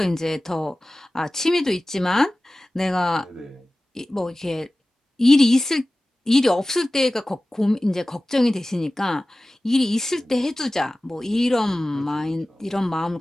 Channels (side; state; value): both; normal; correlation 0.97